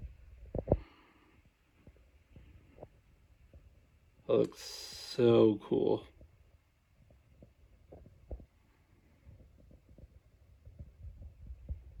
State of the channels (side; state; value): both; identical; correlation 1.00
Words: That looks so cool.